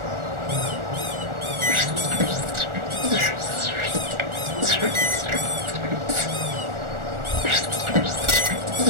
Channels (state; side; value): late; left; 1.4 ms